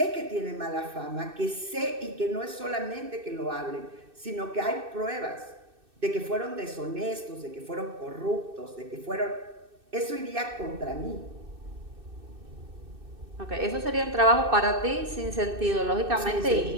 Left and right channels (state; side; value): late; left; 2.6 ms